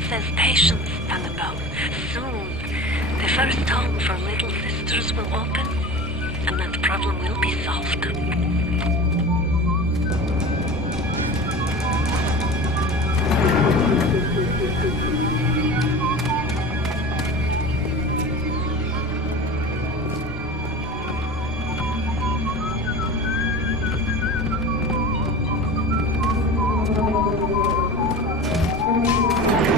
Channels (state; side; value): normal; both; correlation 0.34